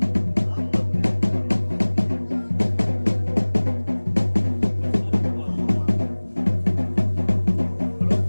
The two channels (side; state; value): both; inverted; correlation -1.00